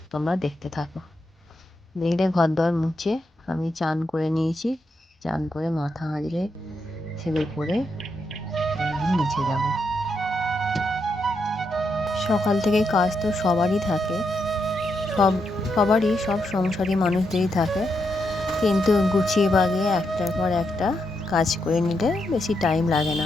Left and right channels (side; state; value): both; normal; correlation 0.82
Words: তোমরা দেখতে থাকো। দেখলে ঘরদোর মুছে আমি চান করে নিয়েছি। চান করে মাথা হাঁড়িয়ে সিঁদুর পরে আমি নিচে যাব। সকাল থেকে কাজ তো সবারই থাকে, সবারই, সব সংসারী মানুষদেরই থাকে, কিন্তু গুছিয়ে বাগিয়ে একটার পর একটা কাজ করে নিলে বেশি টাইম লাগে